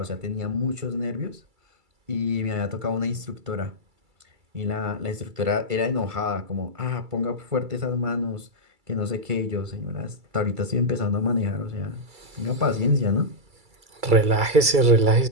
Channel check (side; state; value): left; late; 2.3 ms